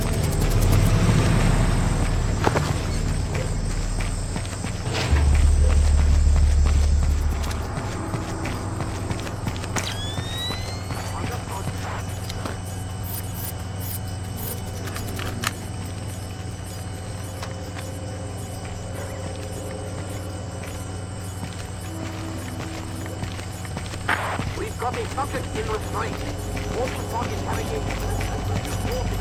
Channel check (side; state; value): both; identical; correlation 1.00